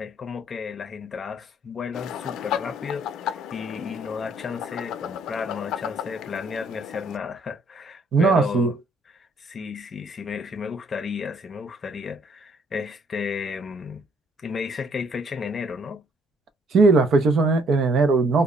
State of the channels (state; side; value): normal; both; correlation 0.65